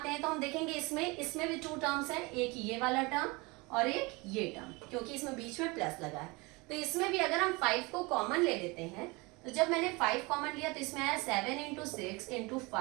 हैं तो हम देखेंगे इसमें भी 2 टर्म्स हैं, एक ये वाला टर्म और एक ये टर्म, क्योंकि इसमें बीच में प्लस लगा है। तो इसमें भी अगर हम 5 को कॉमन ले लेते हैं, तो जब मैंने 5 कॉमन लिया तो इसमें आया 7 into 6 into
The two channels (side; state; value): left; quieter; 25.4 dB